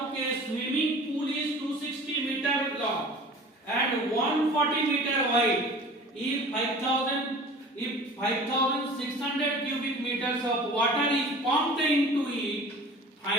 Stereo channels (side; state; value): both; normal; correlation 0.42